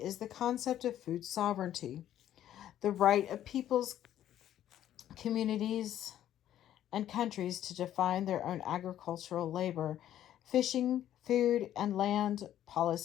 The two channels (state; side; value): quieter; right; 11.7 dB